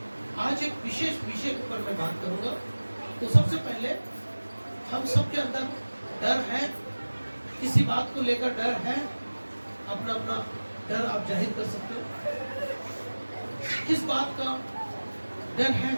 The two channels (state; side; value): inverted; both; correlation -1.00